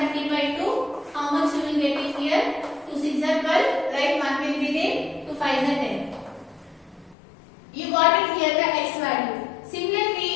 by 2. How much you will get it here? 2 6 are 12, right? 1 will be there, 2 5 are 10. You got it here the x value.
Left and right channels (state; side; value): drops out; right; at 7.2 s